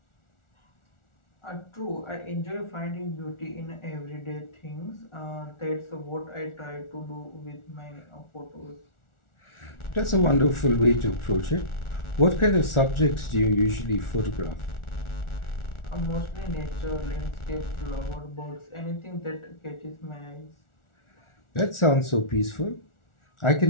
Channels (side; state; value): right; late; 1.4 ms